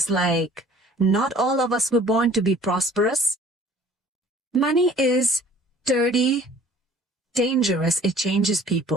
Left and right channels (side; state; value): both; normal; correlation 0.52